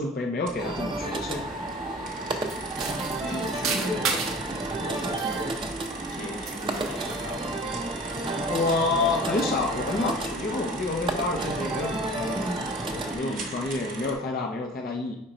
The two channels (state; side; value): normal; both; correlation 0.42